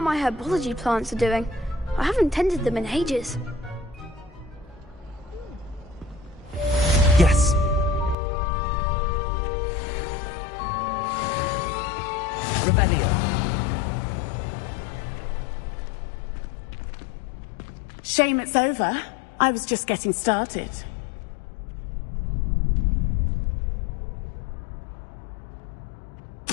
my herbology plants are doing. I haven't tended them in ages. Yes. Revelio. Shame it's over. I was just getting started.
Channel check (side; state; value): right; drops out; at 8.2 s